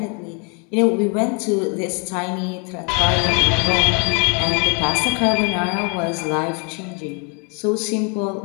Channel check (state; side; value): quieter; right; 34.8 dB